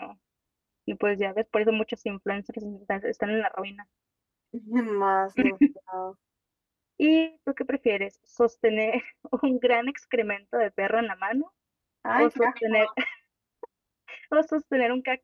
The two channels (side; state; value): both; identical; correlation 1.00